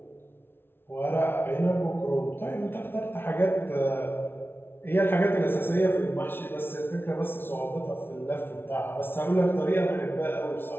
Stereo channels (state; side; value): late; right; 0.11 ms